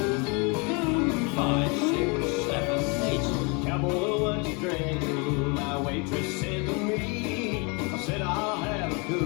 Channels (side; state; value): right; quieter; 31.2 dB